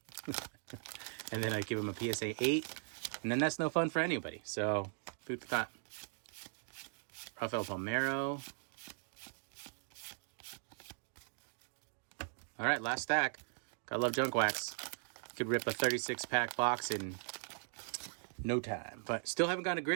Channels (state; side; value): silent; left; digital silence